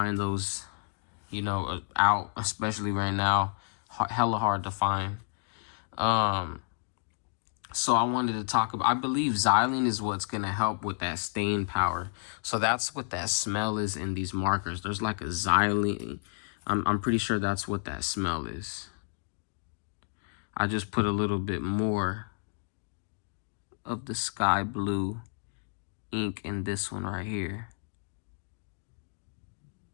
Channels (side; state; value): right; silent; digital silence